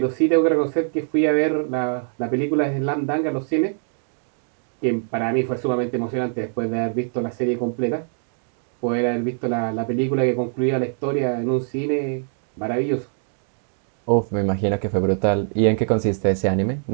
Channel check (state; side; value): silent; left; 63 dB below the other